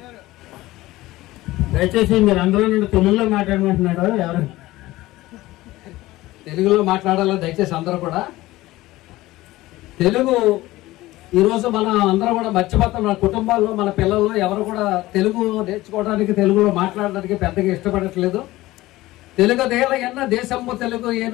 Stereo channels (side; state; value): right; quieter; 17.8 dB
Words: దయచేసి మీరు అందరూ నుండి తెలుగులో మాట్లాడమంటున్నాడు. ఎవరు తెలుగులో మాట్లాడాలో దయచేసి అందరూ కూడా. తెలుగు ఈరోజు మనం అందరం కూడా మర్చిపోతాం. మన కుటుంబాల్లో మన పిల్లల్లో ఎవరు కూడా తెలుగు నేర్చుకోవడానికి, తెలుగులో మాట్లాడడానికి పెద్దగా ఇష్టపడట్లేదు. తెలుగు దేల ఎన్న దేశము తెలుగు